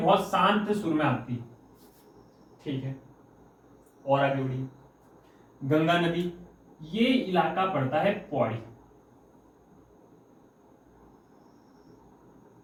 शांत सुर में आती है। ठीक है, और आगे बढ़िए। गंगा नदी, ये इलाका पड़ता है पौड़ी।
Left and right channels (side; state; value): both; identical; correlation 1.00